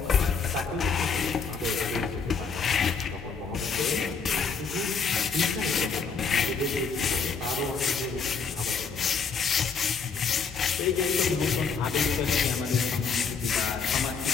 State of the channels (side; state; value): right; quieter; 5.4 dB